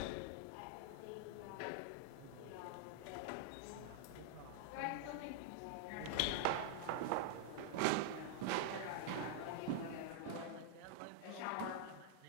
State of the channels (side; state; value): both; different; correlation -0.01